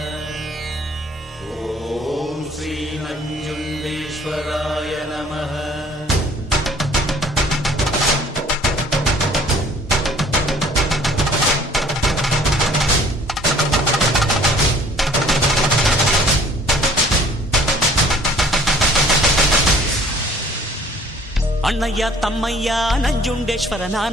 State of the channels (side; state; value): both; normal; correlation 0.54